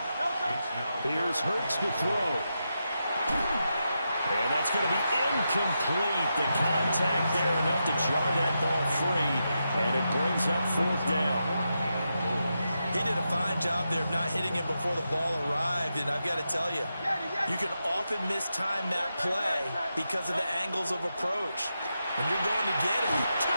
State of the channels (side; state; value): both; inverted; correlation -0.87